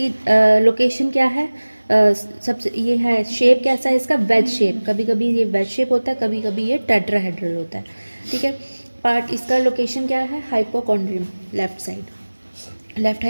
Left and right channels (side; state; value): both; inverted; correlation -1.00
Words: लोकेशन क्या है, सबसे ये है शेप कैसा है इसका, वेज शेप, कभी कभी ये वेज शेप होता है, कभी कभी ये टेट्राहेड्रल होता है, ठीक है। पार्ट इसका लोकेशन क्या है, hypochondrium, left side, left